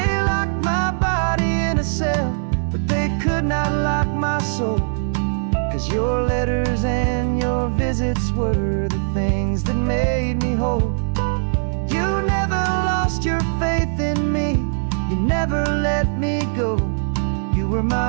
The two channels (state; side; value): silent; left; digital silence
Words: locked my body in a cell, but they could not lock my soul, 'cause your letters and your visits were the things that made me whole. You never lost your faith in me, you never let me go. You were